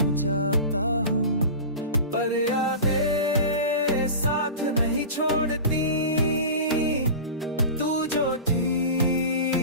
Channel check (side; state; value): both; inverted; correlation -0.31